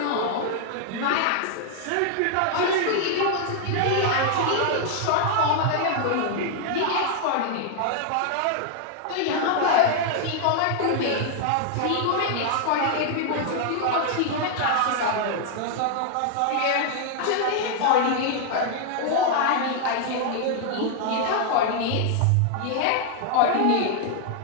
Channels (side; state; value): both; different; correlation 0.00